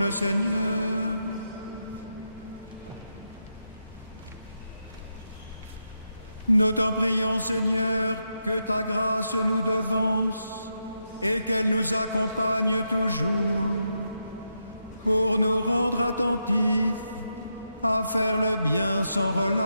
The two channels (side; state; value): both; inverted; correlation -0.84